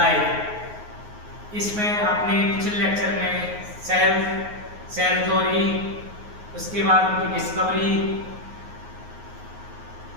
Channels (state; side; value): late; left; 9.5 ms